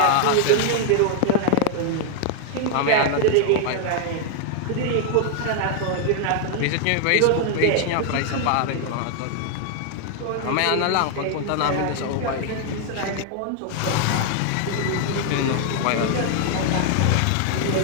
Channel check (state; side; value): different; both; correlation 0.00